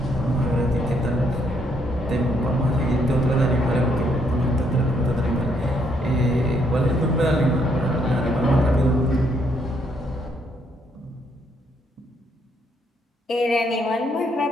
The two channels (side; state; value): both; normal; correlation 0.72